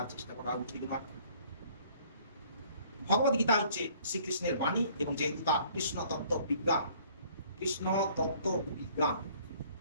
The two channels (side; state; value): both; inverted; correlation -0.57